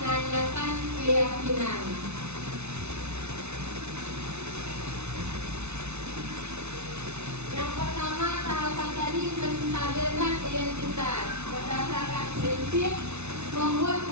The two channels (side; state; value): left; late; 0.81 ms